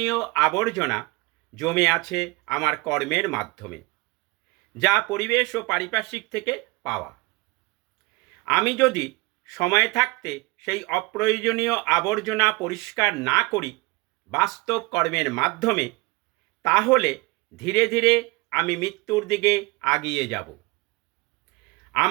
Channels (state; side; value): quieter; left; 23.8 dB